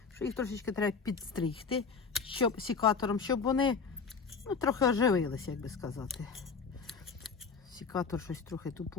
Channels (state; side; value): quieter; right; 5.2 dB